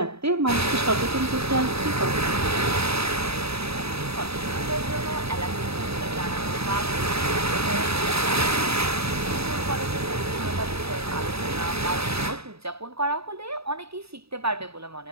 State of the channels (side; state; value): left; late; 0.77 ms